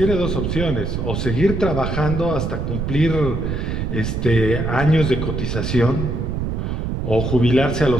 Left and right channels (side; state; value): right; noise; rumble, 2 dB below the sound